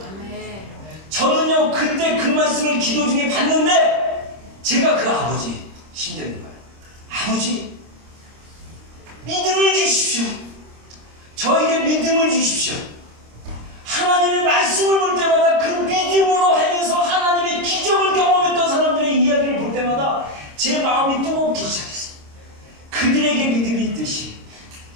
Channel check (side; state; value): left; late; 26 ms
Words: 저는요 그때 그 말씀을 기도 중에 받는데, 제가 그 아버지 심정인 거예요. 아버지, 믿음을 주십시오. 저에게 믿음을 주십시오. 하나님의 말씀을 볼 때마다 그 믿음으로 행해서 하나님의 기적을 경험했던 사람들의 이야기를 볼 때마다 제 마음이 뜨겁기 시작했어요. 그들에게 믿음이 있듯이